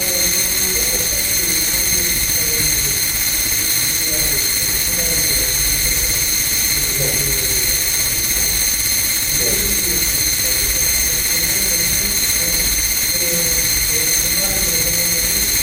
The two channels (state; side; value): identical; both; correlation 1.00